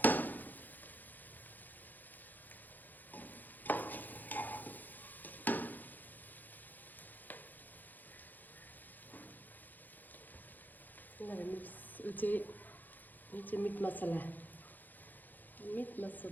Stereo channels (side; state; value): right; late; 0.085 ms